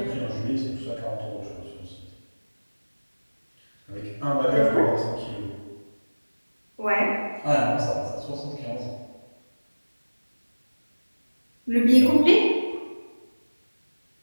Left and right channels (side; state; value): both; inverted; correlation -1.00